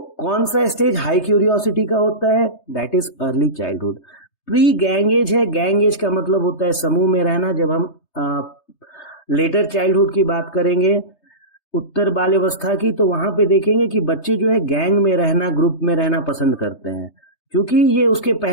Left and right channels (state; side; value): late; right; 3.3 ms